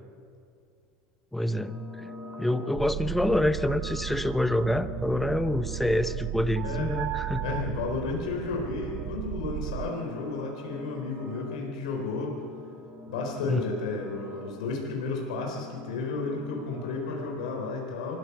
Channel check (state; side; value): normal; both; correlation 0.61